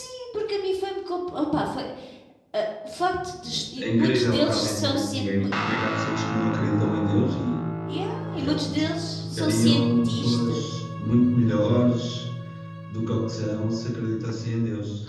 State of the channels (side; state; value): both; identical; correlation 1.00